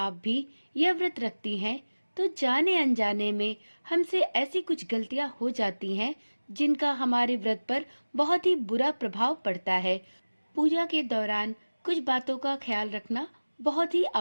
भी यह व्रत रखती हैं, तो जाने अनजाने में हमसे ऐसी कुछ गलतियां हो जाती हैं जिनका हमारे व्रत पर बहुत ही बुरा प्रभाव पड़ता है। पूजा के दौरान कुछ बातों का ख्याल रखना बहुत ही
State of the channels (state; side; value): inverted; both; correlation -1.00